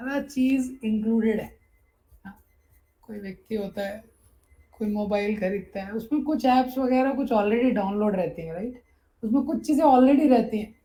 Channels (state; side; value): identical; both; correlation 1.00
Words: चीज इंक्लूडेड है। हाँ, कोई व्यक्ति होता है, कोई मोबाइल खरीदता है, उसमें कुछ ऐप्स वगैरह कुछ ऑलरेडी डाउनलोड रहती हैं, राइट, उसमें कुछ चीज़ें ऑलरेडी रहती हैं।